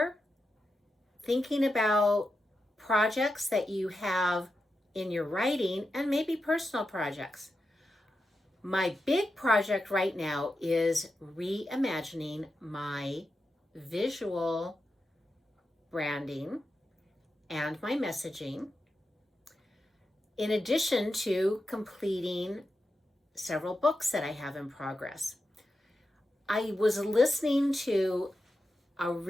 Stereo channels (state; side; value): normal; both; correlation 0.89